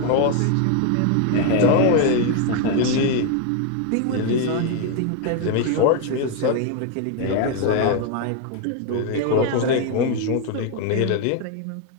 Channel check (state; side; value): different; both; correlation 0.01